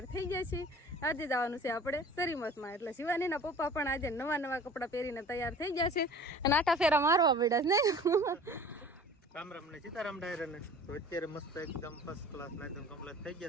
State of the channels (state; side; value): normal; both; correlation 0.44